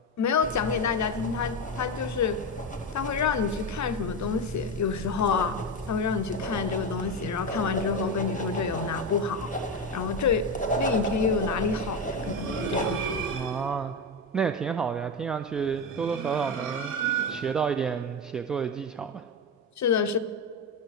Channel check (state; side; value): normal; both; correlation 0.16